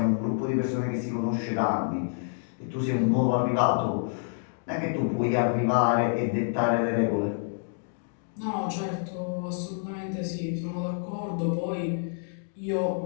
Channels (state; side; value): silent; right; digital silence